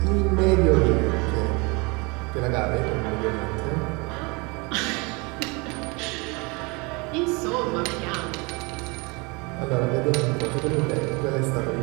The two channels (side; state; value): left; quieter; 28.4 dB